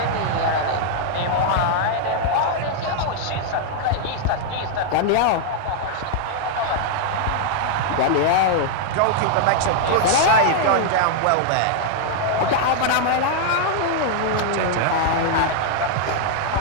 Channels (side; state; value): both; different; correlation -0.01